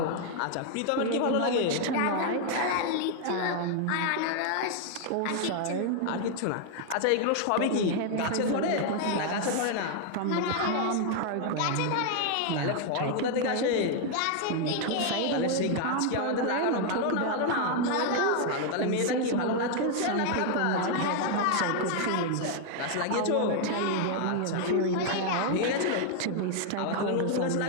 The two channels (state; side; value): different; both; correlation 0.00